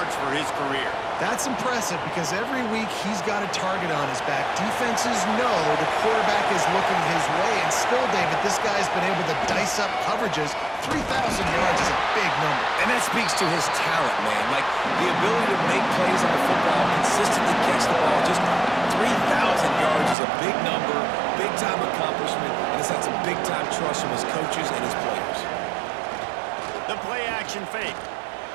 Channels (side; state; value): left; drops out; at 20.2 s